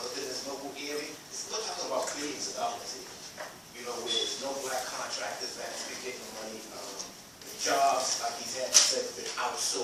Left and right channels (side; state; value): both; identical; correlation 1.00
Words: local area, we're talking about billions of dollars here, where there's no black contractors that's been getting money, jobs, like he's had said, been